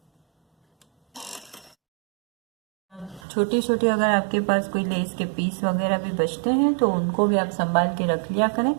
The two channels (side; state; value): left; drops out; at 3.2 s